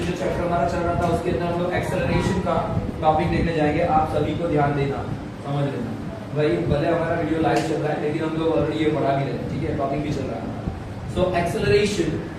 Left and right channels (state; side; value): identical; both; correlation 1.00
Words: जो chapter हमारा चल रहा था उसके अंदर हम लोग एक्सेलरेशन का टॉपिक देखने जाएंगे. आप सभी को ध्यान देना, समझ लेना. भाई भले हमारा वीडियो लाइव चल रहा है लेकिन हम लोग ऑलरेडी ये पढ़ा भी रहे हैं, ठीक है, टॉपिक भी चल रहा है. So